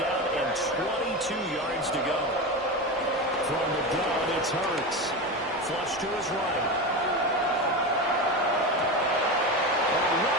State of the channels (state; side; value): normal; both; correlation 0.21